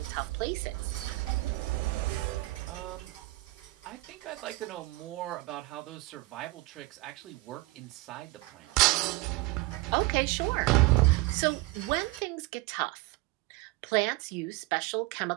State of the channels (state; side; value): quieter; left; 20.9 dB